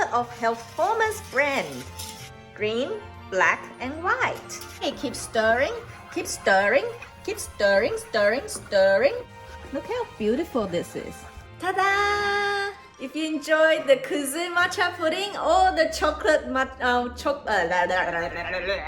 of Health Formers brand. Green, black and white. Hey, keep stirring, keep stirring, keep stirring, stirring, stirring. Look how beautiful this is. Ta-da! If you enjoyed the kuzu matcha pudding or the chocolate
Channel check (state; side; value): identical; both; correlation 1.00